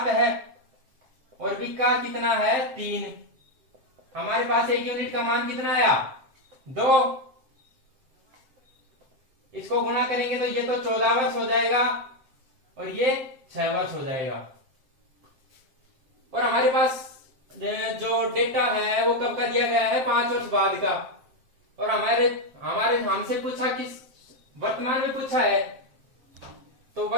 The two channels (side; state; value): left; late; 7.7 ms